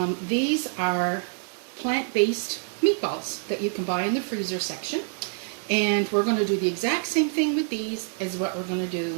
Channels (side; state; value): left; silent; 55 dB below the other